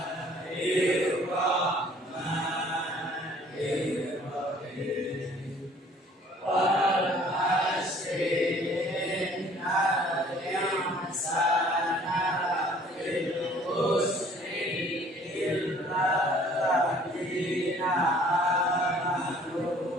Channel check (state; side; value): normal; both; correlation 0.55